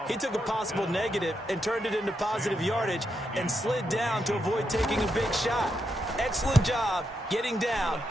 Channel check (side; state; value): both; normal; correlation 0.83